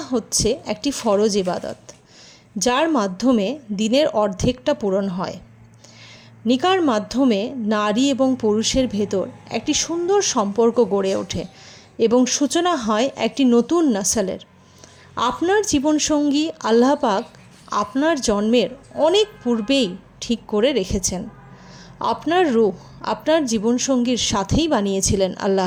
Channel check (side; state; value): both; identical; correlation 1.00